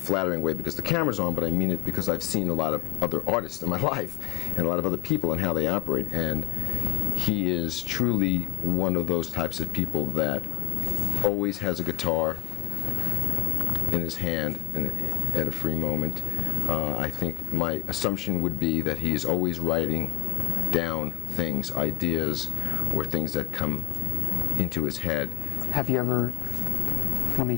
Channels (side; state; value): right; quieter; 18.5 dB